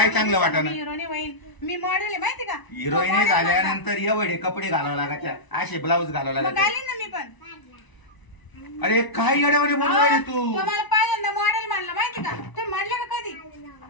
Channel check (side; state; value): right; late; 1.0 ms